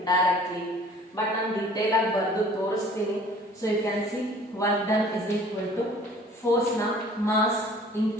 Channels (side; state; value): both; normal; correlation 0.50